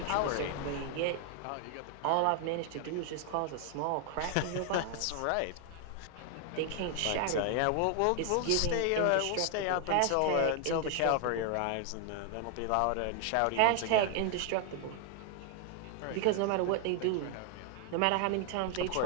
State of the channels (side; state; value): both; different; correlation 0.00